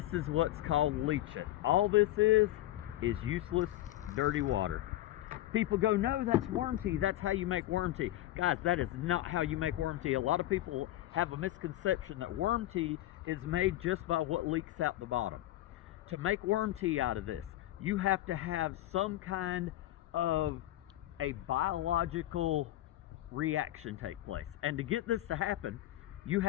is what's called leach-it. All this is useless, dirty water. People go, no, that's worm tea. That's how you make worm tea. Guys, that is not how you make worm tea. A lot of people have a misconception that worm tea is made just by what leaks out the bottom. To make worm tea out of this, you have to have some kind of a biological reaction take place. And to get this to happen, you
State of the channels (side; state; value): right; quieter; 15.0 dB